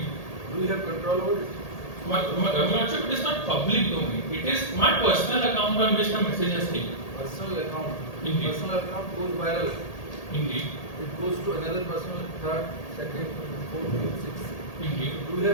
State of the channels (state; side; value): late; right; 1.8 ms